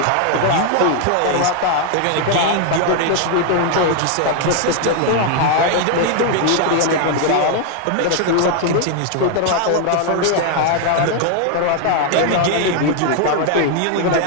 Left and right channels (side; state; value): both; different; correlation 0.00